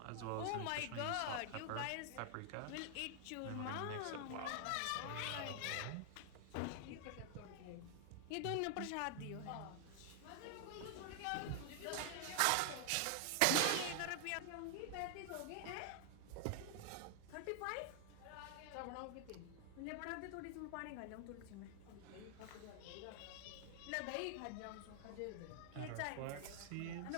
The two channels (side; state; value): both; different; correlation 0.00